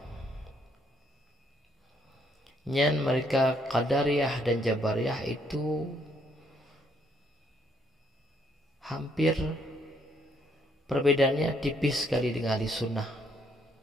nyan mereka Qadariyah dan Jabariyah itu hampir perbedaannya tipis sekali dengan Ahlussunnah.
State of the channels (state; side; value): normal; both; correlation 0.70